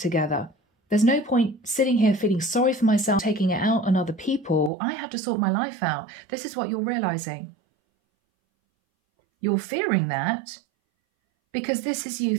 together. There's no point sitting here feeling sorry for myself, taking it out on other people. I have to sort my life out. This is what you're realizing. You're fearing that because this is you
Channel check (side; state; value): left; drops out; at 4.7 s